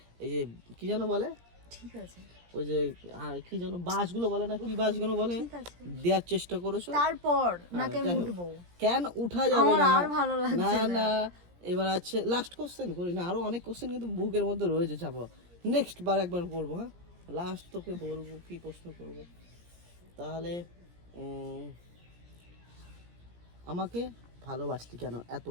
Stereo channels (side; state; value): left; late; 17 ms